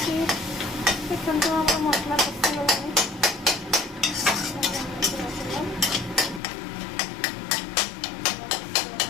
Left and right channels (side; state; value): right; drops out; at 6.4 s